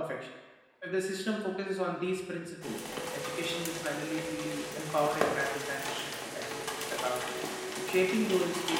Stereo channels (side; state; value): both; identical; correlation 1.00